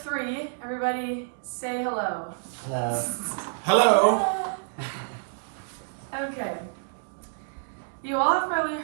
Everybody say hello. Hello. Hello. Okay. You all have probably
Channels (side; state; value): left; silent; digital silence